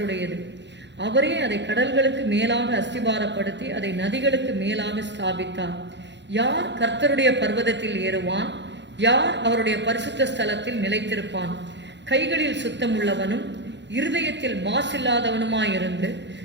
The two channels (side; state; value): left; late; 0.52 ms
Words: அவரே அதை கடல்களுக்கு மேலாக அஸ்திபாரப்படுத்தி அதை நதிகளுக்கு மேலாக ஸ்தாபித்தார். யார் கர்த்தருடைய பர்வதத்தில் ஏறுவான்? யார் அவருடைய பரிசுத்த ஸ்தலத்தில் நிலைத்திருப்பான்? கைகளில் சுத்தமுள்ளவனும் இருதயத்தில் மாசில்லாதவனுமாயிருந்து